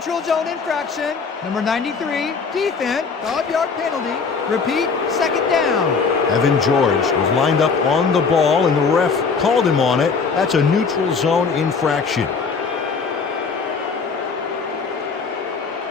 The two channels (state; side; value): quieter; right; 5.1 dB